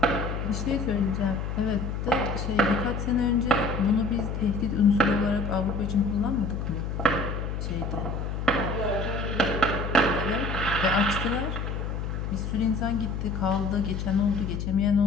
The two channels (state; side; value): noise; left; hum, 3 dB below the sound